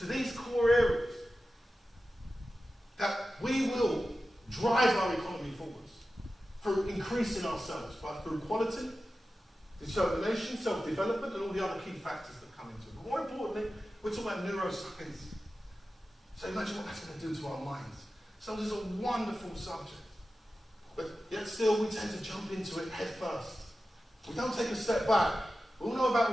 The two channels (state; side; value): normal; both; correlation 0.94